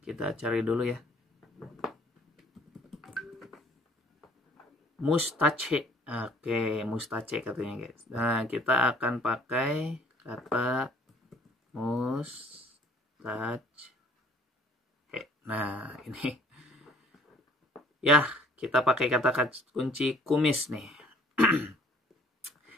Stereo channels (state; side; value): normal; both; correlation 0.57